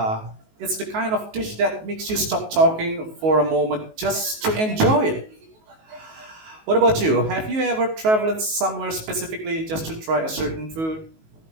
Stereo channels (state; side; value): late; left; 19 ms